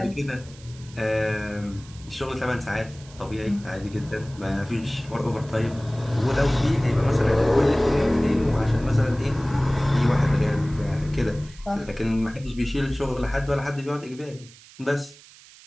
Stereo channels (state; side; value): noise; right; hiss, 22 dB below the sound